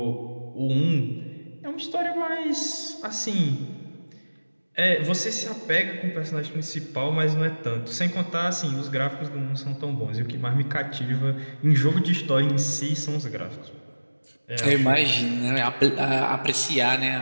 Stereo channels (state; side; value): inverted; both; correlation -1.00